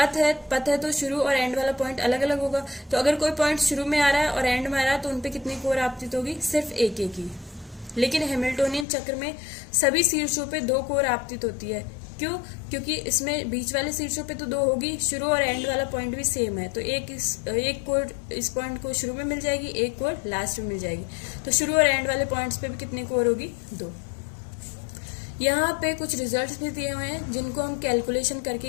है तो शुरू और एंड वाला पॉइंट अलग अलग होगा, तो अगर कोई पॉइंट शुरू में आ रहा है और एंड में आ रहा है तो उनपे कितनी कोर आपतित होगी, सिर्फ एक ही। लेकिन हैमिल्टोनियन चक्र में सभी शीर्षों पे 2 कोर आपतित होती है। क्यों, क्योंकि इसमें बीच वाले शीर्षों पे तो 2 होगी, शुरू और एंड वाला पॉइंट भी सेम है, तो एक कोर इस पॉइंट को शुरू में मिल जाएगी, एक कोर लास्ट में मिल जाएगी। तो शुरू और एंड वाले पॉइंट्स पे भी कितनी कोर होगी, 2। यहाँ पे कुछ रिजल्ट्स भी दिए हुए हैं जिनको हम कैलकुलेशन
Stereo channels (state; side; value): drops out; right; at 8.8 s